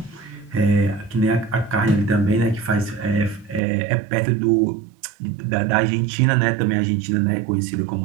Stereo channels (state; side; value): drops out; left; at 3.6 s